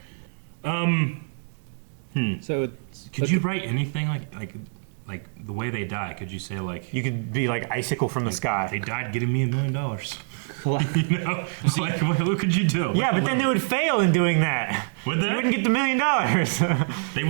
So could you write anything like the way they die? Could you say, like, You could be like icicle from the sky. they died getting me $1 million? Like, what could you do? Yeah, but then they would fail in doing that. Would they? You wouldn't get the $1 million. They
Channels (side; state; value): left; silent; digital silence